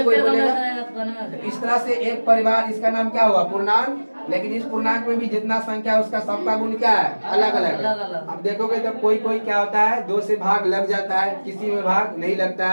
कोई बोलेगा। इस तरह से एक परिवार, इसका नाम क्या हुआ, पूर्णांक। लेकिन इस पूर्णांक में भी जितना संख्या है उसका सबका गुण क्या है, अलग अलग। अब देखोगे तो कोई कोई क्या होता है, 2 से भाग लग जाता है, किसी में भाग नहीं लगता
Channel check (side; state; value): both; inverted; correlation -1.00